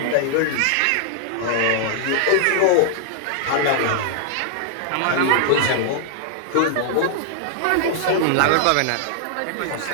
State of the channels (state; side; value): different; both; correlation -0.01